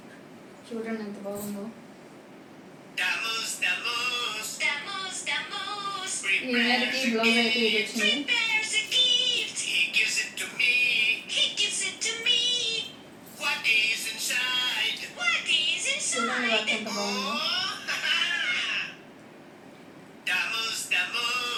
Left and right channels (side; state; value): both; identical; correlation 1.00